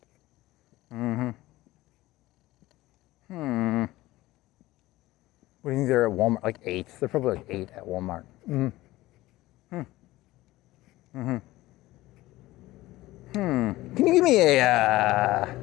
What do you think they're at Walmart? Like 8. They're probably like 8 at Walmart. Can you give me a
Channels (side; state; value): right; quieter; 17.7 dB